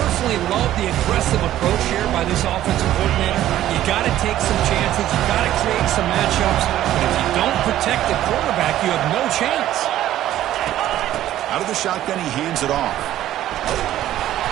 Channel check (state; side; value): quieter; left; 13.0 dB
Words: love the aggressive approach here by this offensive coordinator. You got to take some chances. You got to create some matchups. But if you don't protect the quarterback, you have no chance. Out of the shotgun, he hands it off.